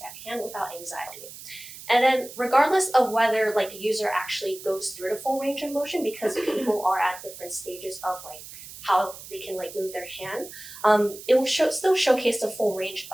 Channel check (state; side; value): noise; right; hiss, 15 dB below the sound